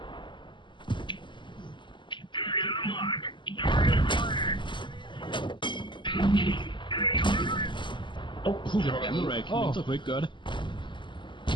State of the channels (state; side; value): late; right; 0.23 ms